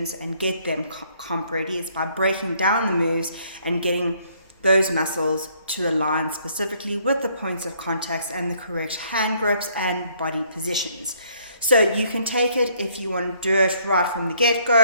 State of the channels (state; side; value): inverted; both; correlation -0.66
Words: and get them comp ready, is by breaking down the moves and getting those muscles to align specifically with the points of contacts and the correct hand grips and body positions. So you can take it if you want to do it right from the